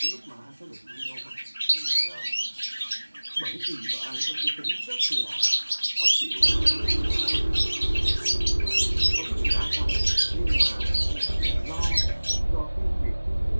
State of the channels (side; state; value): both; inverted; correlation -1.00